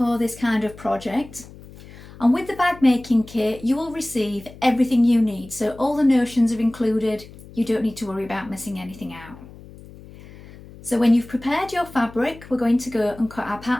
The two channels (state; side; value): noise; left; hum, 19 dB below the sound